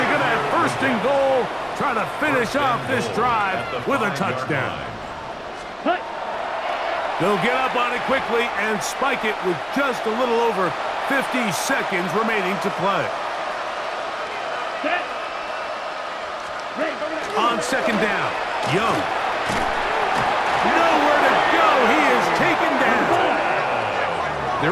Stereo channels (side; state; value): both; identical; correlation 1.00